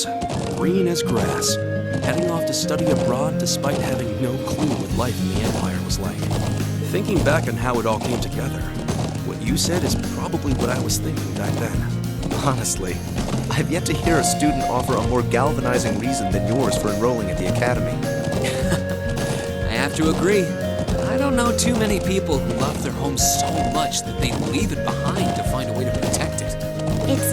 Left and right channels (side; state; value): both; identical; correlation 1.00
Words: green as grass, heading off to study abroad despite having no clue what life in the Empire was like. Thinking back on how it all came together, what you said is probably what I was thinking back then. Honestly, I've yet to hear a student offer a more galvanizing reason than yours for enrolling at the academy. I have to agree. I don't know too many people who love their home so much that they'd leave it behind to find a way to protect it.